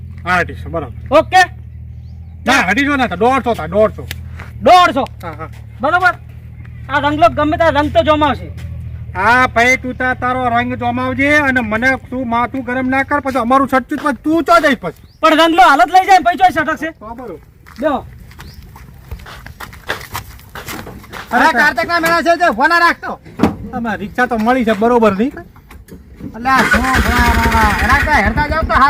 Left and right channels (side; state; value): both; identical; correlation 1.00